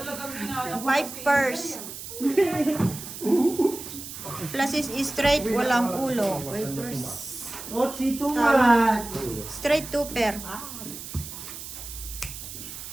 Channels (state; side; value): noise; right; hiss, 11 dB below the sound